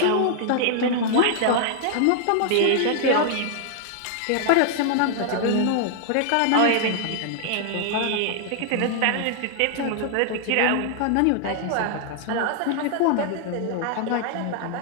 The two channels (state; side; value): different; both; correlation 0.00